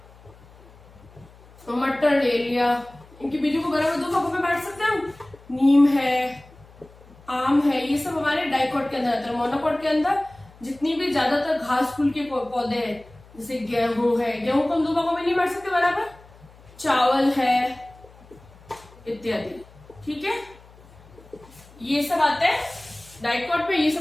मटर, ले लिया, इनके बीजों को बराबर 2 भागों में बांट सकते हैं हम। नीम है, आम है, ये सब हमारे डाइकोट के अंदर आता है। मोनोकोट के अंदर जितनी भी ज्यादातर घास फूल के पौधे हैं, जैसे गेहूं है, गेहूं को हम 2 भागों में नहीं बांट सकते बराबर, चावल है इत्यादि। ठीक है, ये सब आते हैं डाइकोट में, ये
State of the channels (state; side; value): noise; left; hum, 24 dB below the sound